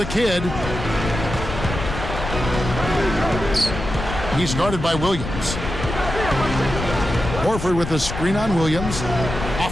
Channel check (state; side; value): noise; left; rumble, 6 dB below the sound